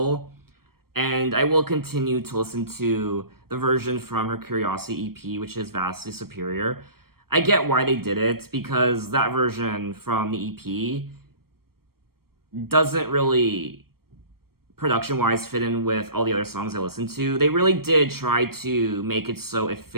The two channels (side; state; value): left; late; 0.94 ms